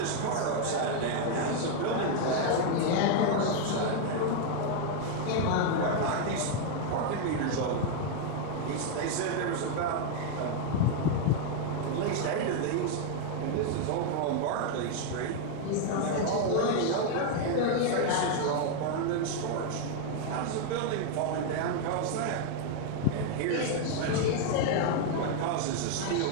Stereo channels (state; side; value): different; both; correlation 0.00